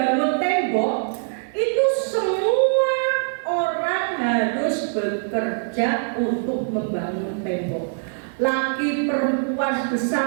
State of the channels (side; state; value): left; silent; 63 dB below the other